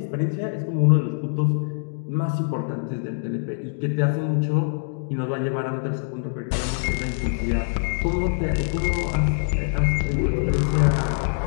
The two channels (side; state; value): right; silent; digital silence